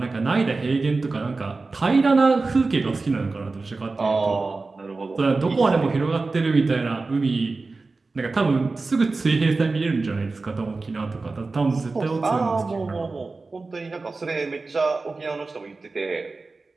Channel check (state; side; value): quieter; left; 3.7 dB